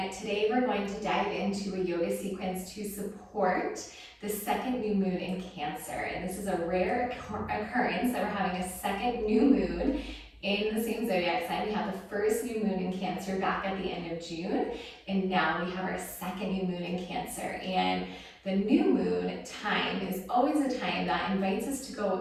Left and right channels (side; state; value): both; identical; correlation 1.00